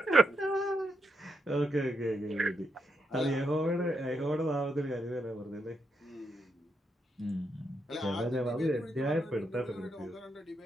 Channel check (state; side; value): normal; both; correlation 0.81